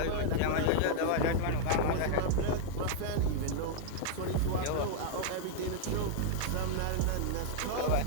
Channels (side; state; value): both; different; correlation -0.01